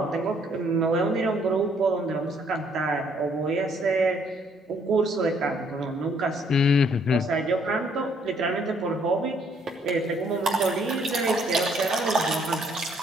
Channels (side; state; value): both; normal; correlation 0.66